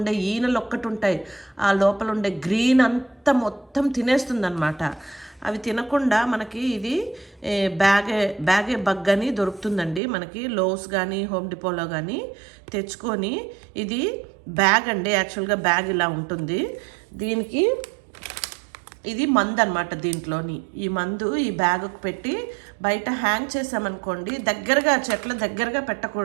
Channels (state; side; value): drops out; left; at 10.0 s